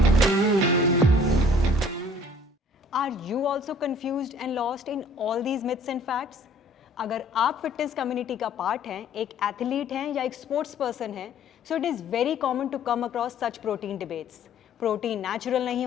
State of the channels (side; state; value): both; normal; correlation 0.54